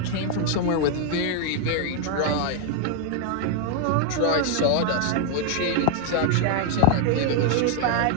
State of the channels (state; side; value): different; both; correlation 0.00